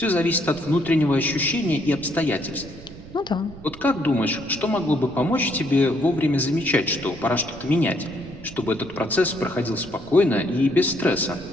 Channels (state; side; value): noise; right; rumble, 17 dB below the sound